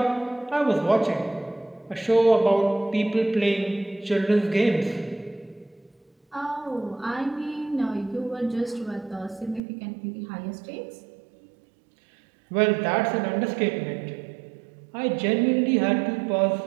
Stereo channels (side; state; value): left; drops out; at 9.6 s